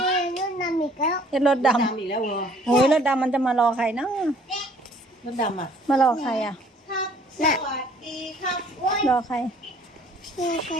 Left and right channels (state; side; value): normal; both; correlation 0.57